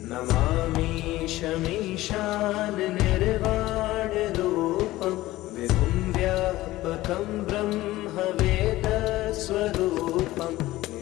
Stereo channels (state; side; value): quieter; right; 17.0 dB